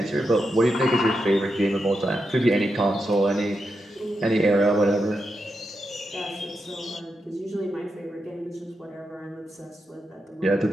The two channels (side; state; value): both; normal; correlation 0.86